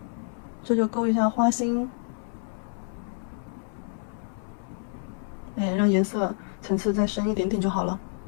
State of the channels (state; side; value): silent; right; 59 dB below the other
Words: 这就勾一下花心。让颜色层次再深一点点就好了。